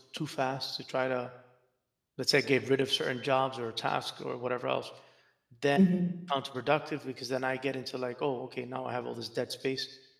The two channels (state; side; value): identical; both; correlation 1.00